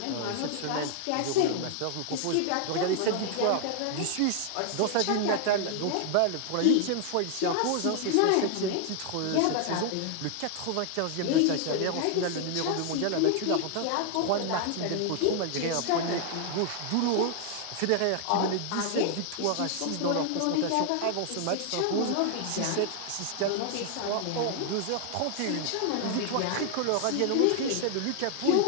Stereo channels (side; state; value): both; different; correlation 0.00